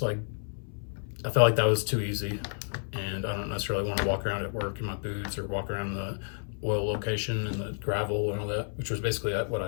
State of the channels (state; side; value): silent; right; 58 dB below the other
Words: like, I felt like that was too easy, and I don't necessarily want to walk around at work in my boots or walk around the oil location and the gravel and all that, which was basically what